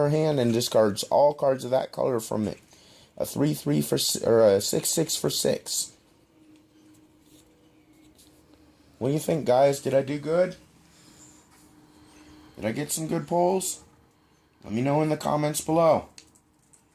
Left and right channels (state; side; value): identical; both; correlation 1.00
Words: hand and discards all cards of that color from it. A 3/3 for, or a 6/6 for 6. What do you think, guys? Did I do good? Did I get some good polls? Let me know in the comments below.